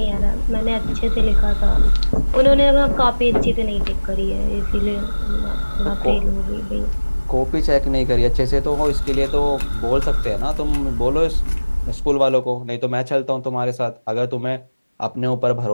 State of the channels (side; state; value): both; inverted; correlation -1.00